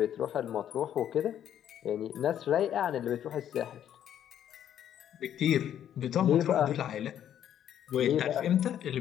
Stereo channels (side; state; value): right; quieter; 10.3 dB